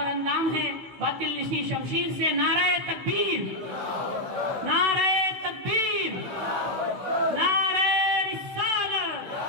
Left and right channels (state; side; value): late; left; 16 ms